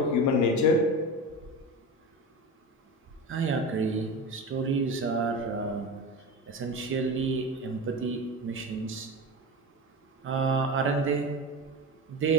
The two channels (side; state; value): both; normal; correlation 0.26